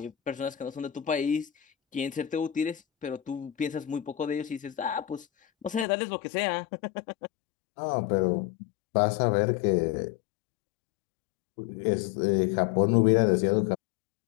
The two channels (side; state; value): right; drops out; at 5.9 s